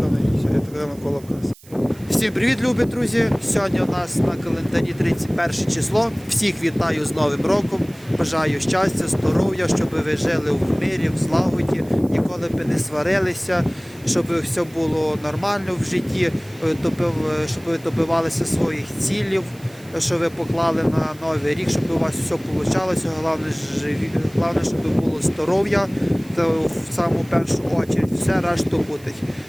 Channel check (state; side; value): noise; right; hiss, 24 dB below the sound